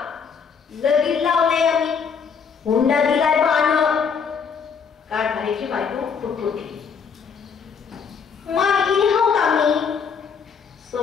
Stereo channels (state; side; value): quieter; right; 6.3 dB